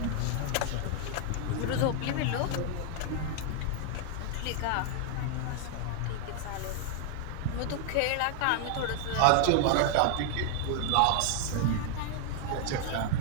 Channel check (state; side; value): different; both; correlation 0.00